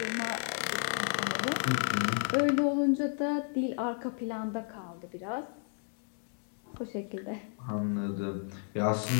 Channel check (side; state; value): right; silent; 56 dB below the other